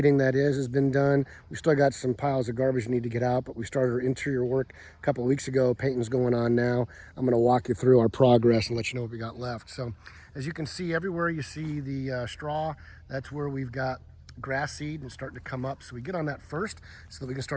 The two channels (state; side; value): identical; both; correlation 1.00